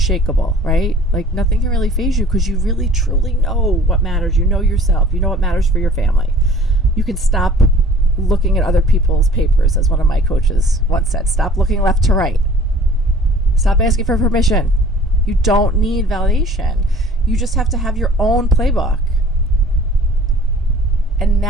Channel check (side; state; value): both; normal; correlation 0.50